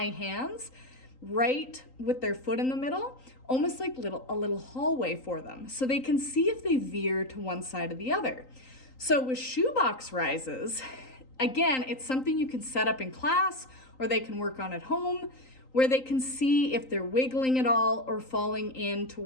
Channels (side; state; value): right; late; 3.9 ms